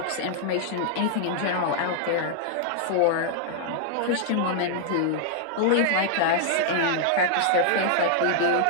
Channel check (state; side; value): different; both; correlation -0.01